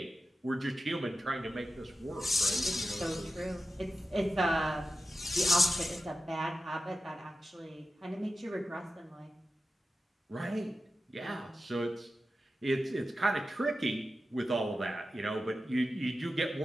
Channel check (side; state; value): both; normal; correlation 0.92